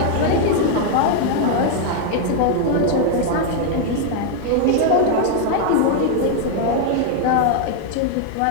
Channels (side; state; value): both; different; correlation 0.00